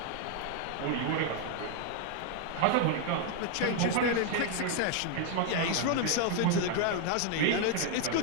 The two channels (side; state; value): both; different; correlation 0.00